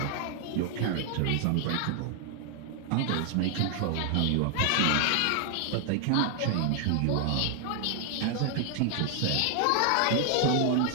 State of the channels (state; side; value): different; both; correlation 0.00